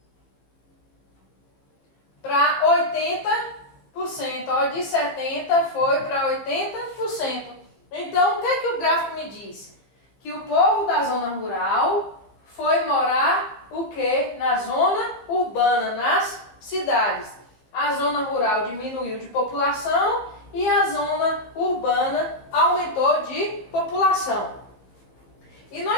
Para 80%. Ó, de 70% foi para 80%. Então, o que é que o gráfico me diz? Que o povo da zona rural foi morar o quê? Na zona urbana, nas cidades. A zona rural diminuiu de população e a zona urbana aumentou de população. E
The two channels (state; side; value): late; right; 15 ms